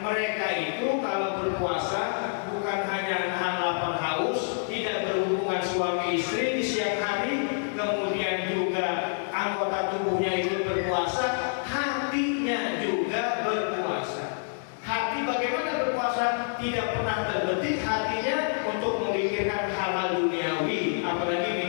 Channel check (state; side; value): silent; right; digital silence